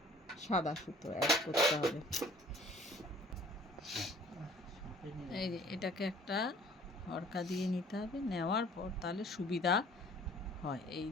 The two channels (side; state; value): both; normal; correlation 0.53